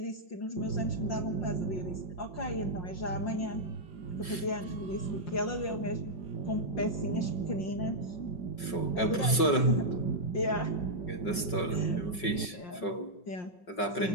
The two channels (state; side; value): late; right; 5.3 ms